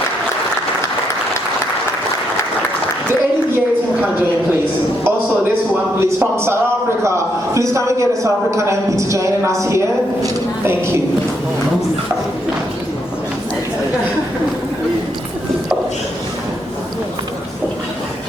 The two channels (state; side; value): normal; both; correlation 0.77